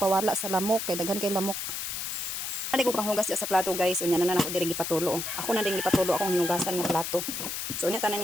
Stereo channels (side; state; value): left; noise; hiss, 4 dB below the sound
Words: sa lamok kay daghan kay lamok. Dali ko panghugas sa plato guys unya na ako diri gipatulo. Oh. Ako na din gipatulo akong hinugasan nga plato. So unya tanan